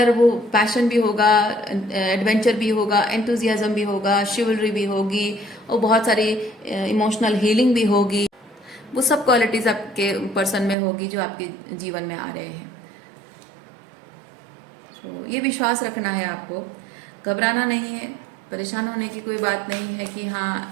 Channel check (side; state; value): left; drops out; at 10.8 s